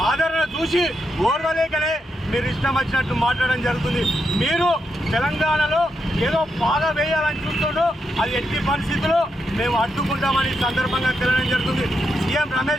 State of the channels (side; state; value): both; normal; correlation 0.83